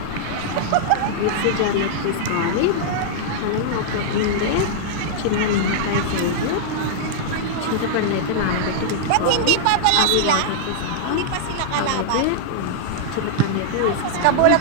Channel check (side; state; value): both; different; correlation -0.01